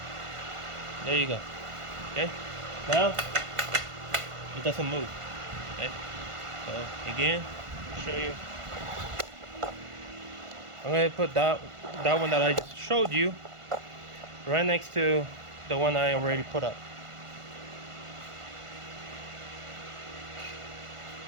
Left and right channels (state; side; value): late; left; 1.5 ms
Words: There you go. Okay, now it doesn't move. Okay, so again, I'll show you. I'm going to put that one that I just showed you right next to the one I already put up.